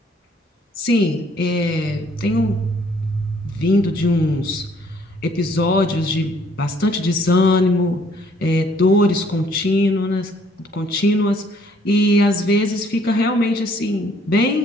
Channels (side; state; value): both; normal; correlation 0.62